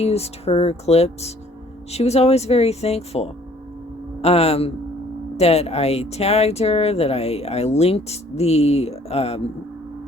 her clips, she was always very thankful that I tagged her, that I linked the...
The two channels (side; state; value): both; normal; correlation 0.58